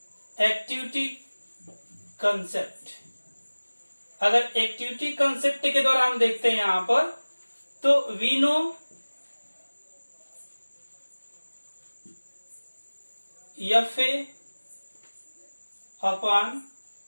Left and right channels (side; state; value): both; inverted; correlation -1.00